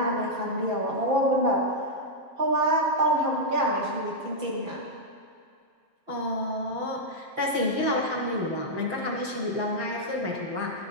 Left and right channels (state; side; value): late; left; 7.5 ms